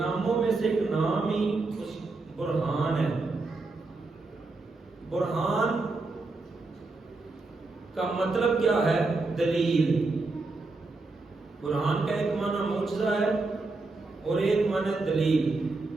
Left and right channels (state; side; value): quieter; left; 3.5 dB